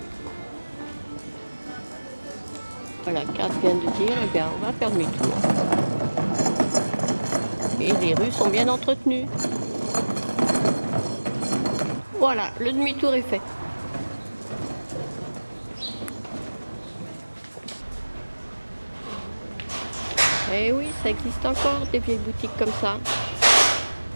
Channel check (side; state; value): both; inverted; correlation -1.00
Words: Voilà, Kat vient de dire, eh bien, on va faire demi-tour. Et les rues sont bien entretenues. Voilà, le demi-tour est fait. Eh oui, ça existe encore des vieilles boutiques comme ça.